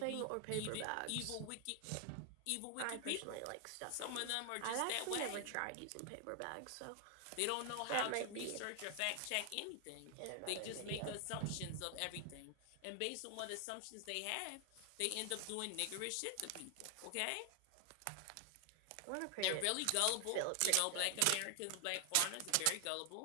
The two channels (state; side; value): different; both; correlation 0.00